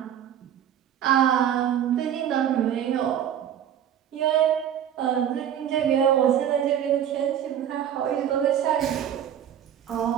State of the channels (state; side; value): quieter; left; 9.8 dB